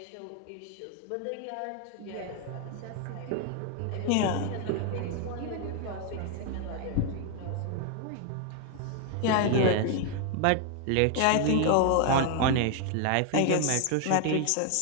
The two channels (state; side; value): different; both; correlation 0.00